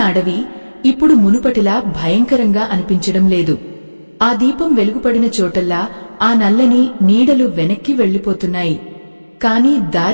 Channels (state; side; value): inverted; both; correlation -1.00